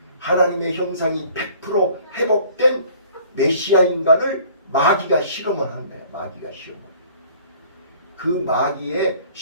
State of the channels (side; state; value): both; inverted; correlation -0.53